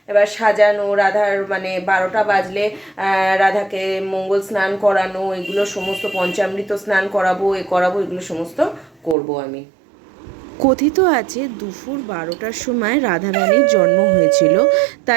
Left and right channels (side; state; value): left; drops out; at 9.2 s